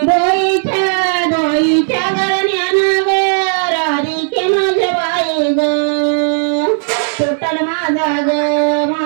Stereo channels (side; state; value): left; silent; digital silence